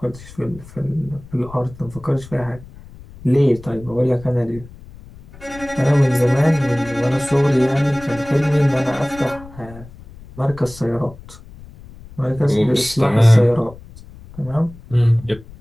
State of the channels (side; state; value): left; noise; rumble, 19 dB below the sound